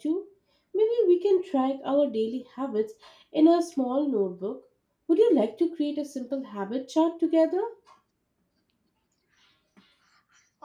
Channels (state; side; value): identical; both; correlation 1.00